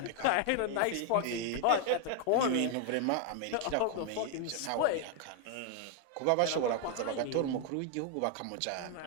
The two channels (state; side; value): different; both; correlation 0.00